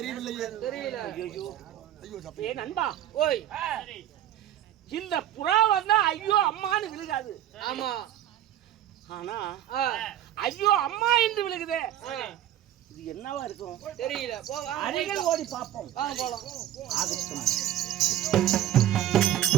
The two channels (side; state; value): left; quieter; 12.2 dB